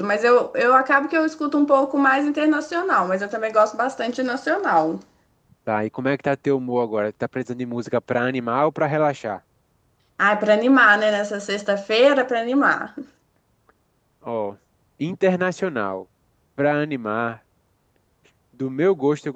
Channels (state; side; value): identical; both; correlation 1.00